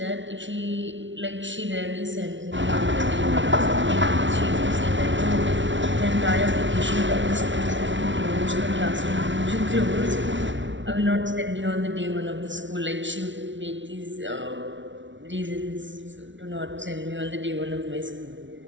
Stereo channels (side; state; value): left; late; 0.55 ms